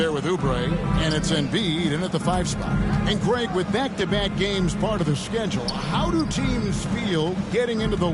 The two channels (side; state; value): both; identical; correlation 1.00